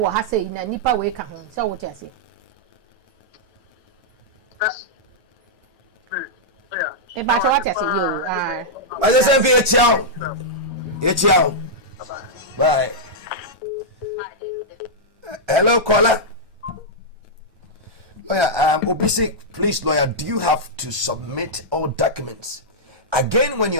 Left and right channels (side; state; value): both; normal; correlation -0.08